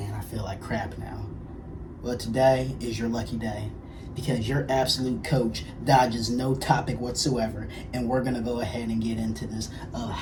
I feel like crap now. Well, today is your lucky day because your absolute coach dodges no topic whatsoever, and we're going to go ahead and get into this of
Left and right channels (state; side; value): identical; both; correlation 1.00